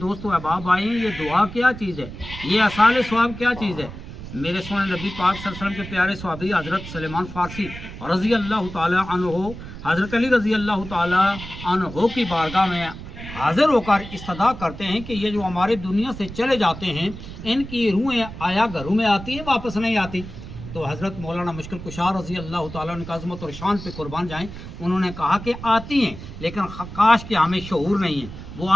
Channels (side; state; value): right; noise; rumble, 12 dB below the sound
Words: دوست و احباب آئے ہیں، یہ دعا کیا چیز ہے، یہ اصحاب ثواب کیا چیز ہے۔ میرے سونے نبی پاک صلی اللہ علیہ وسلم کے پیارے صحابی حضرت سلیمان فارسی رضی اللہ تعالی عنہ، حضرت علی رضی اللہ تعالی عنہ کی بارگاہ میں حاضر ہو کر استدعا کرتے ہیں کہ یہ جو ہمارے دنیا سے چلے جاتے ہیں ان کی روحیں آیا گھروں میں آتی ہیں واپس نہیں آتی؟ تو حضرت مولانا مشکل کشار رضی اللہ تعالیٰ عنہ کی عظمت اور شان پہ قربان جائیں، انہوں نے کہا کہ آتی ہیں لیکن کاش کہ ہمیں شعور نہیں ہے، وہ